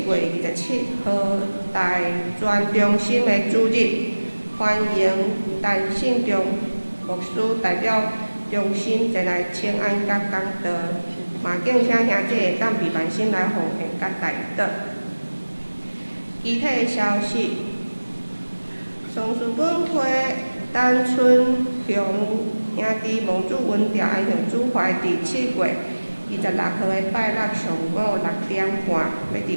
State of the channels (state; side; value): inverted; both; correlation -1.00